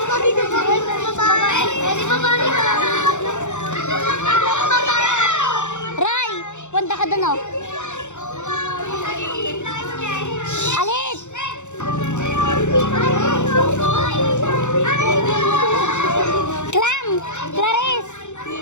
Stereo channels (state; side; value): late; right; 0.84 ms